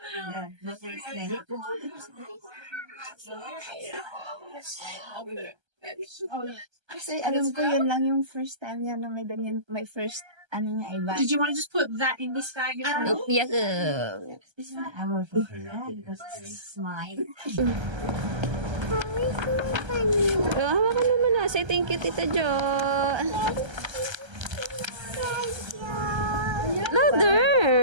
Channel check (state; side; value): late; left; 1.3 ms